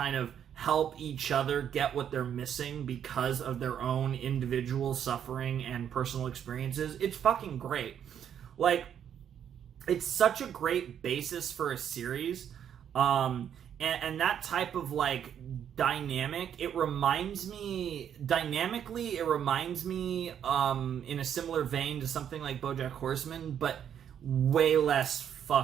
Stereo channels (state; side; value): quieter; left; 9.1 dB